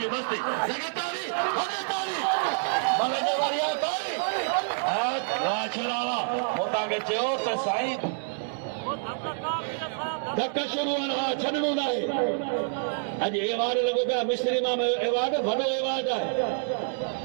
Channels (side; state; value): left; silent; digital silence